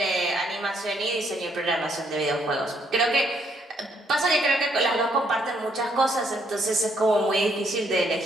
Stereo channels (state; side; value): normal; both; correlation 0.71